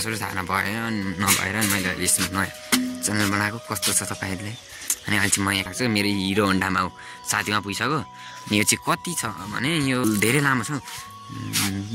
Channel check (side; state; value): both; identical; correlation 1.00